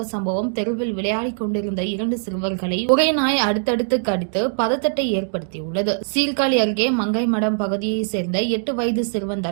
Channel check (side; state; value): left; silent; 65 dB below the other